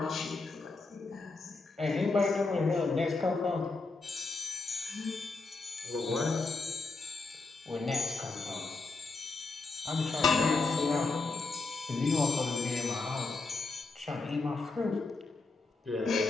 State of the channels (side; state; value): right; quieter; 3.7 dB